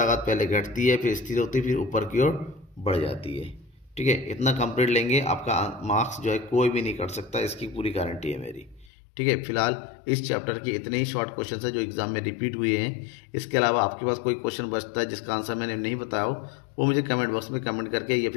पहले घटती है, फिर स्थिर होती है, फिर ऊपर की ओर बढ़ जाती है। ठीक है, इतना कंप्लीट लेंगे, आपका मार्क्स जो है कोई भी नहीं कर सकता, इसकी पूरी गारंटी है मेरी। ठीक है, फिलहाल इस चैप्टर के इतने ही शॉर्ट क्वेश्चन है जो एग्जाम में रिपीट हुए हैं। इसके अलावा आपके पास कोई क्वेश्चन बचता है जिसका आंसर मैंने नहीं बताया हो, वो मुझे कमेंट बॉक्स में कमेंट करके या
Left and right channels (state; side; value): drops out; right; at 8.9 s